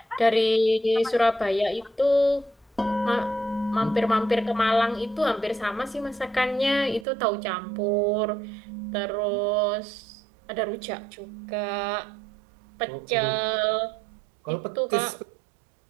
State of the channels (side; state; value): left; drops out; at 7.1 s